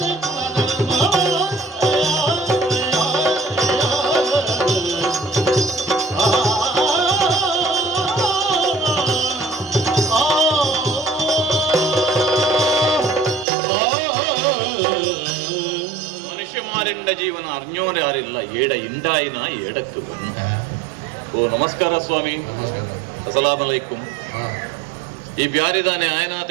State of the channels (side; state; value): left; drops out; at 13.5 s